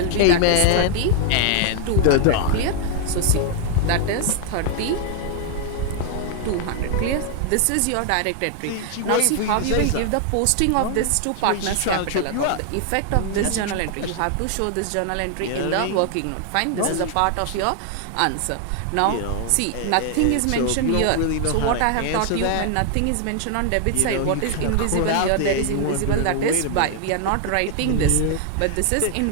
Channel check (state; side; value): different; both; correlation 0.00